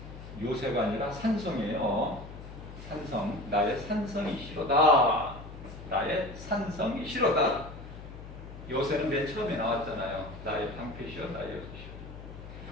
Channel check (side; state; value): left; noise; hum, 13 dB below the sound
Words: 요새가 아니라 산성이에요. 산성. 나의 산성이시로다. 나의 산성이시로다. 요새는 맨 처음에 나왔잖아요. 나의 방패시오. 나의 요새시오.